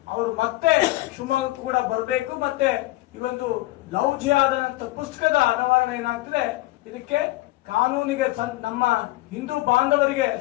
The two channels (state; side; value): quieter; right; 18.8 dB